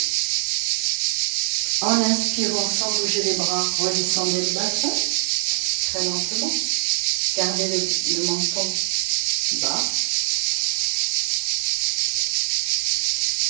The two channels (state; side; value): silent; left; 60 dB below the other